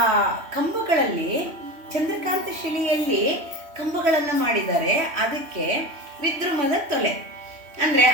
ಕಂಬಗಳಲ್ಲಿ ಚಂದ್ರಕಾಂತ ಶಿಲೆಯಲ್ಲಿ ಕಂಬಗಳನ್ನು ಮಾಡಿದ್ದಾರೆ. ಅದಕ್ಕೆ ವಿದ್ರುಮದ ತೊಲೆ ಅಂದರೆ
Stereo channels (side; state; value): left; late; 3.1 ms